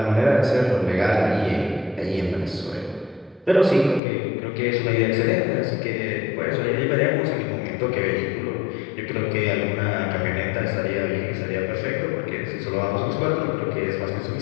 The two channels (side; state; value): right; drops out; at 4.0 s